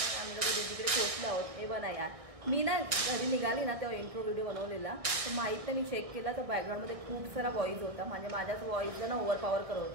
आम्ही लोक दीदीकडे पोहोचलो आहोत. हे बघा यार, मी ना घरी निघाली ना तेव्हा इंट्रो व्हिडिओ बनवलेला, तर माहीत नाही मी चेक केला तर बॅकग्राऊंडमध्ये खूप सारा वॉईस होता, म्हणजे माझ्याच वॉईसला ना ओव्हर पॉवर करत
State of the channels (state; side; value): late; left; 1.6 ms